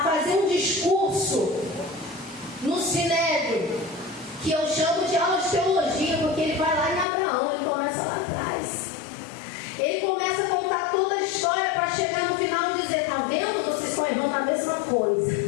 fazer um discurso no Sinédrio, que eu chamo de aula de teologia, porque ele vai lá em Abraão, ele começa lá atrás. Ele começa a contar toda a história para chegar no final e dizer: tá vendo? Vocês estão errando a mesma coisa.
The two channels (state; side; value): drops out; right; at 7.1 s